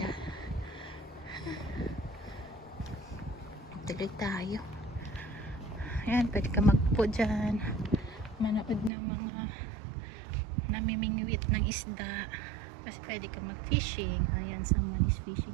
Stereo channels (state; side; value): drops out; left; at 8.9 s